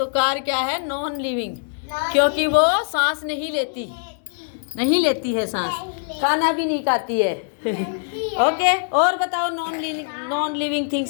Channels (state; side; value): silent; right; digital silence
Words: कार क्या है? नॉन लिविंग, क्योंकि वो सांस नहीं लेती है सांस, खाना भी नहीं खाती है। ओके, और बताओ नॉन लिविंग